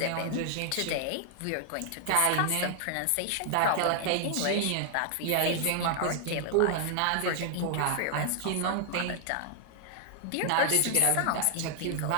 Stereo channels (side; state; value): both; different; correlation 0.00